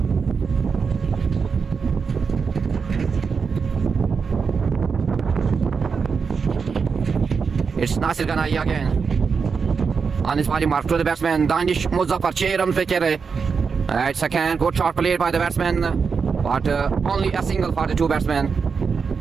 It's Nasir Ghanai again on his body mark to the batsman Danish Muzaffar. 6 runs पे खेल रहे. It's again good shot played by the batsman but only a single for the 2 batsmen.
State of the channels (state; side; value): quieter; left; 5.6 dB